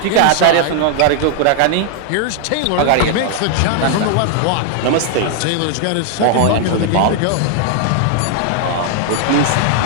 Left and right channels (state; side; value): different; both; correlation 0.00